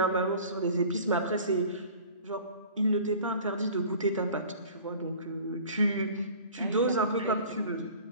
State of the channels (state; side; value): inverted; both; correlation -0.44